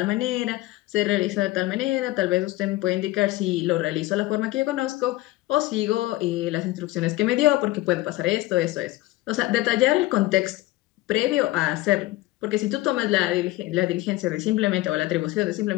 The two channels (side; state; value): right; quieter; 18.2 dB